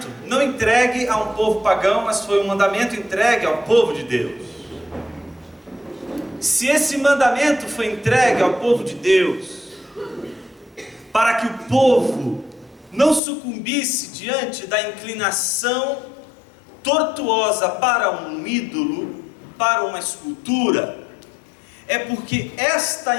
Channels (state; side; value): drops out; right; at 13.2 s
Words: não entregue a um povo pagão, mas foi um mandamento entregue ao povo de Deus. Se esse mandamento foi entregue ao povo de Deus, para que o povo não sucumbisse diante da inclinação tortuosa para um ídolo, para uma escultura, é porque esta